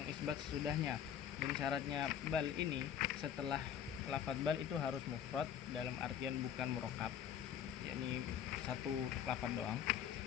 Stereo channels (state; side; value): quieter; right; 9.1 dB